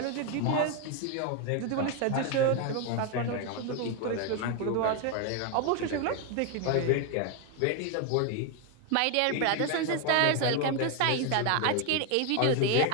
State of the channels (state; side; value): different; both; correlation 0.01